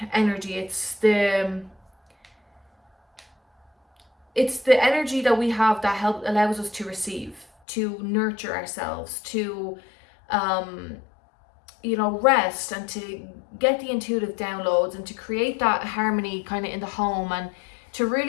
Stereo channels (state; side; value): drops out; right; at 7.5 s